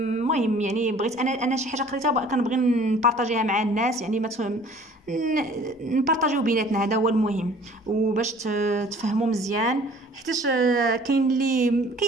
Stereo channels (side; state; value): both; normal; correlation 0.51